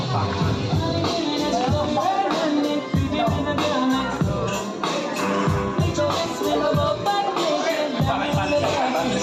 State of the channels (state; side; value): identical; both; correlation 1.00